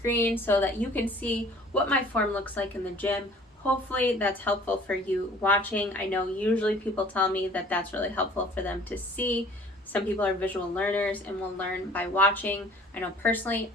so that you can see what my form looks like in the gym. Hopefully that's helpful for you watching. I know usually people tell me that that's really helpful for them to see. Some people are visual learners and will learn by watching. I know personally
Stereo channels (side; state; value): both; normal; correlation 0.52